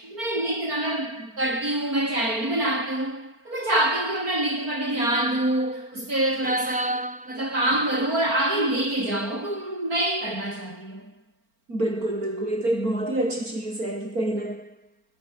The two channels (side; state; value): left; late; 4.4 ms